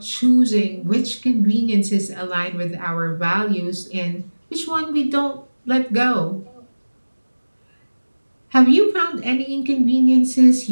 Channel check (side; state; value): both; inverted; correlation -1.00